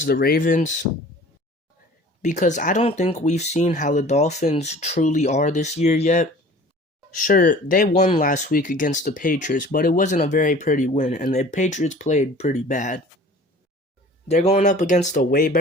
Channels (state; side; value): normal; both; correlation 0.46